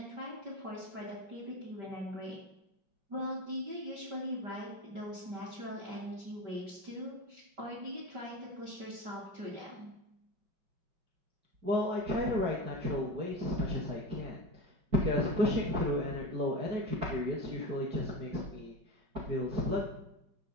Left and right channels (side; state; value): left; late; 5.1 ms